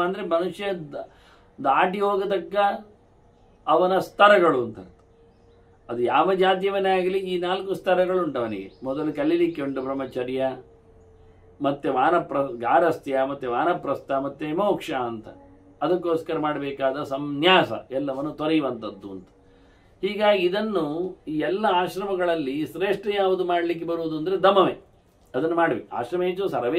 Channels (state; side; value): identical; both; correlation 1.00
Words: ಅಂದರೆ ಮನುಷ್ಯ ದಾಟಿ ಹೋಗತಕ್ಕ ಅವನ ಸ್ತರಗಳು ಅಂತ. ಅದು ಯಾವ ಜಾತಿಯವನೇ ಆಗಲಿ ಈ 4 ಸ್ತರಗಳು ಉಂಟು ಅವನಿಗೆ. ಮೊದಲು ಕಲೀಲಿಕ್ಕೆ ಉಂಟು ಬ್ರಹ್ಮಚರ್ಯ, ಮತ್ತೆ ಗಾರಸ್ಥ್ಯ, ಮತ್ತೆ ವಾನಪ್ರಸ್ಥ, ಮತ್ತೆ ಮೋಕ್ಷ ಅಂತ. ಅದಕ್ಕೋಸ್ಕರ ಮಾಡಬೇಕಾದ ಸಂನ್ಯಾಸ ಎಲ್ಲವನ್ನು ತೊರೆಯುವಂಥದ್ದು ಅಂತ. ಹೀಗಾಗಿ ಇದನ್ನು ಈ ಎಲ್ಲ ಆಶ್ರಮಗಳಲ್ಲಿ ಶ್ರೇಷ್ಠ ಯಾವುದು ಮಾಡಲಿಕ್ಕೆ ಬರುವುದು ಅಂದರೆ ದಮವೇ. ಅದನ್ನು ಮಾಡಬೇಕು. ಆಶ್ರಮೇಶು